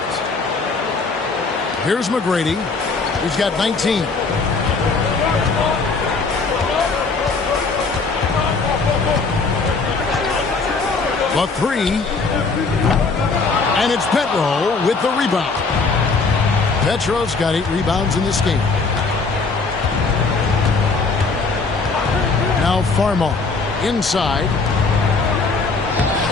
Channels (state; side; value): quieter; right; 4.2 dB